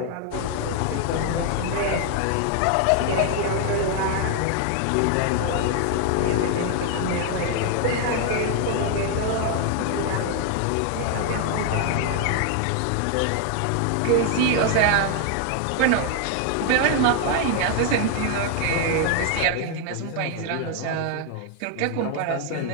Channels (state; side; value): different; both; correlation 0.00